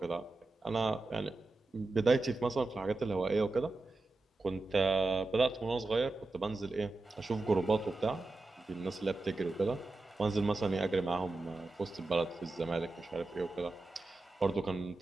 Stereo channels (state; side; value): quieter; left; 3.2 dB